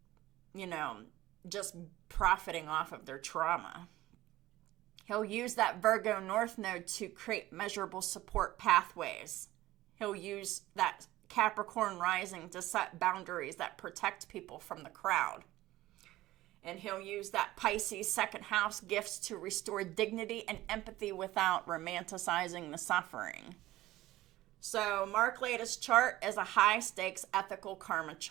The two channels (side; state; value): left; quieter; 16.4 dB